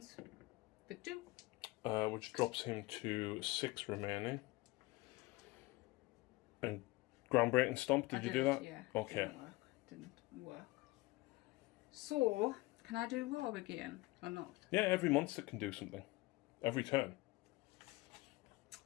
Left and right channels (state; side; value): quieter; right; 21.3 dB